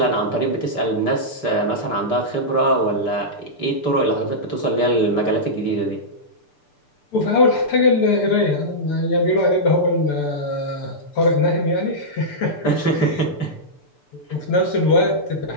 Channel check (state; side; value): late; right; 6.8 ms